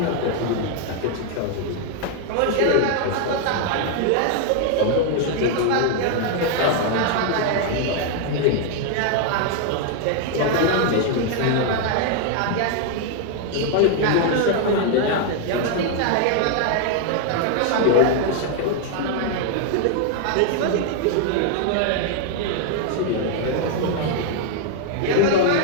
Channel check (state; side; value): different; both; correlation 0.00